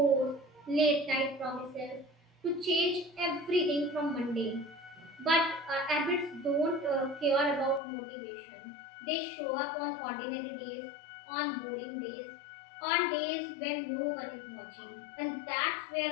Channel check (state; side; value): drops out; right; at 7.8 s